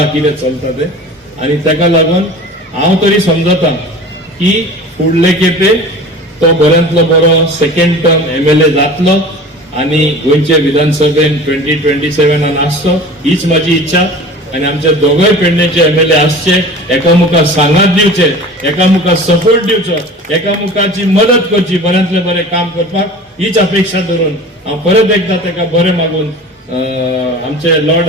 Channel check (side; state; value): both; normal; correlation 0.39